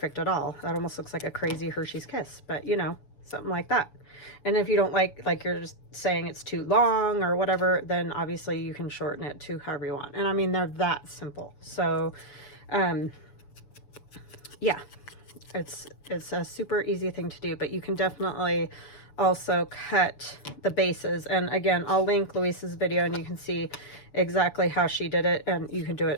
at all. That almost looks like a crazy Hershey's Kiss, but you know, something like that. And if you don't like you're just saying it's too long or whatever, then obviously you can shorten it to however you want. And I mean, they're that simple. So yeah, it's a super easy thing to do, but you can definitely also cut the bases. And again, I'll link Luise's video and you can see exactly how she did it, and you can do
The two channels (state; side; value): late; right; 6.9 ms